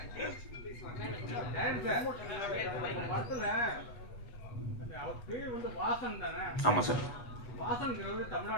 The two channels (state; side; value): late; right; 8.2 ms